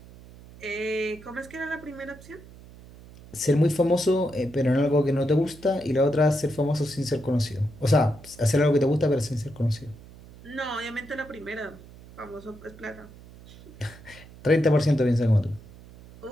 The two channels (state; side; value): noise; right; hum, 20 dB below the sound